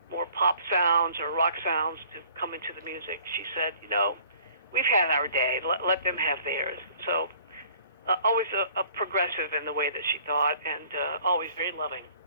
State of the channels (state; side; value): inverted; both; correlation -0.54